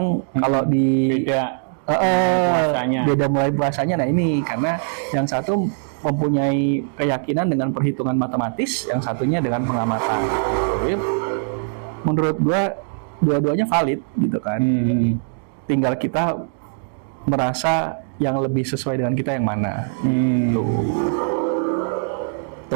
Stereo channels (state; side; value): silent; left; digital silence